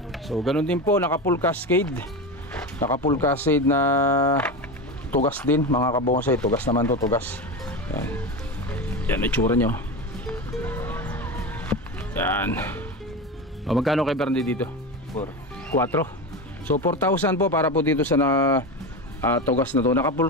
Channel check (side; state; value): both; normal; correlation 0.22